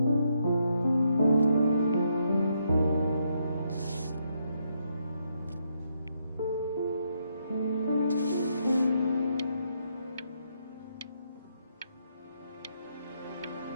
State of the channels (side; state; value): both; inverted; correlation -0.77